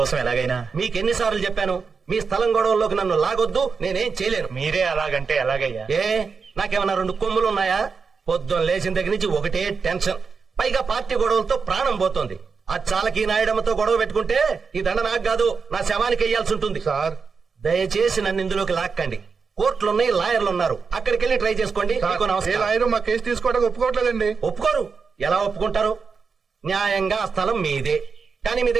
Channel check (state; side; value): quieter; left; 5.2 dB